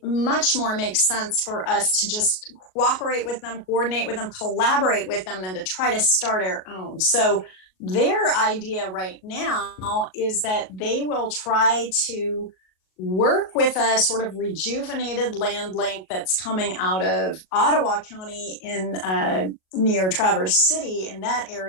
much more makes sense for us to just cooperate with them, coordinate with them, collaborate with them, than to try to start our own. So their idea right now is that they will try to work with a sort of rejuvenated LandLink that's coming out of Ottawa County in near Traverse City, in that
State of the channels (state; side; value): late; right; 38 ms